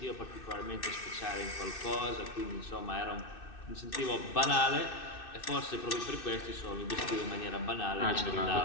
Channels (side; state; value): right; late; 2.6 ms